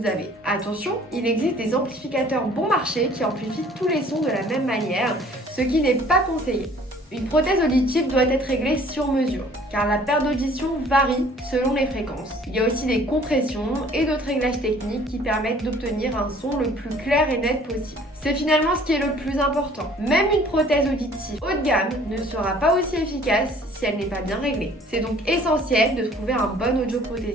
avez. Attention, il existe des amplificateurs bon marché qui amplifient tous les sons de la même manière, ce qui n'est pas conseillé. Une prothèse auditive doit être réglée sur mesure, car la perte d'audition varie selon les fréquences. Il y a aussi des compressions et d'autres réglages techniques qui permettent d'obtenir un son le plus clair et net possible. C'est finalement ce qui est le plus important. Même une prothèse auditive haut de gamme ne sera pas aussi efficace si elle n'est pas bien réglée. C'est donc essentiel de trouver un bon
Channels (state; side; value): normal; both; correlation 0.54